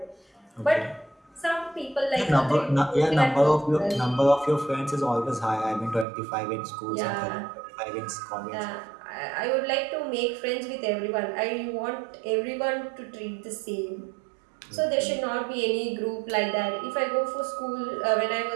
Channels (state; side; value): drops out; left; at 6.1 s